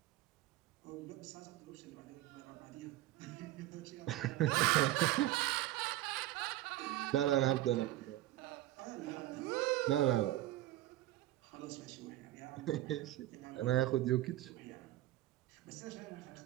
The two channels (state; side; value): quieter; left; 15.4 dB